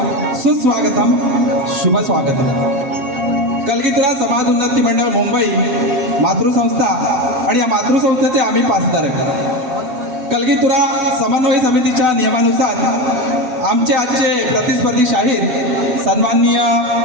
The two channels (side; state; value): left; late; 7.3 ms